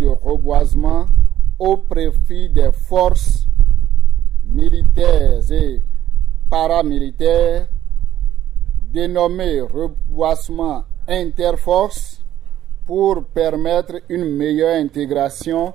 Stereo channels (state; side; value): quieter; left; 12.2 dB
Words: reboisement au profit des forces militaires et paramilitaires dénommée Reboisement Interforce pour permettre une meilleure intégration